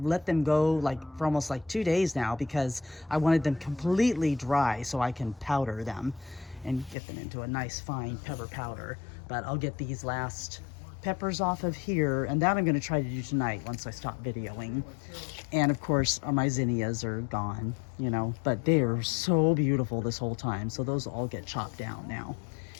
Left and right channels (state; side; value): drops out; right; at 7.0 s